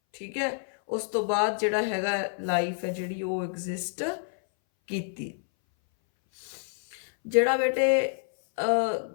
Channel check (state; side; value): silent; right; 59 dB below the other